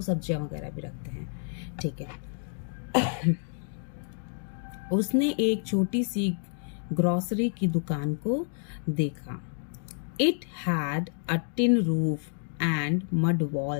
सब्जियां वगैरह भी रखते हैं, ठीक है। उसने एक छोटी सी ग्रॉसरी की दुकान को देखा। It had a tin roof and mud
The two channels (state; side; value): silent; right; 58 dB below the other